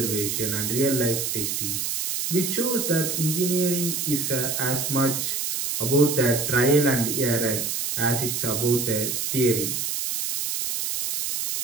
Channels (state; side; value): noise; right; hiss, 1 dB below the sound